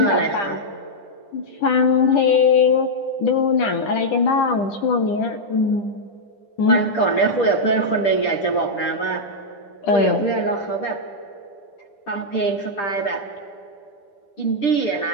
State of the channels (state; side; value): late; right; 10 ms